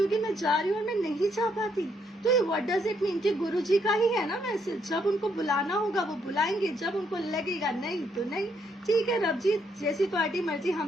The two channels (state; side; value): normal; both; correlation 0.73